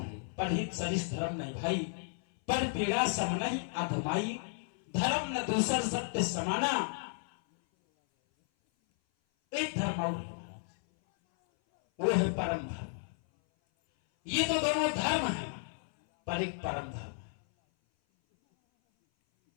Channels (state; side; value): silent; right; 56 dB below the other